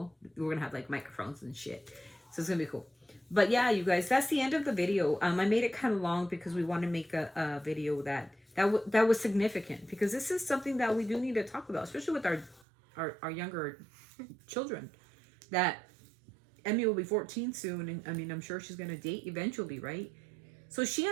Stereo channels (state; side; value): drops out; left; at 12.7 s